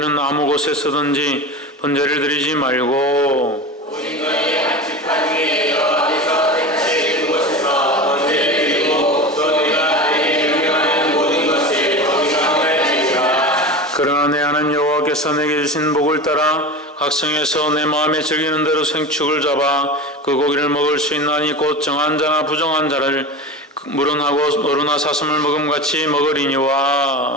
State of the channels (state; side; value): normal; both; correlation 0.28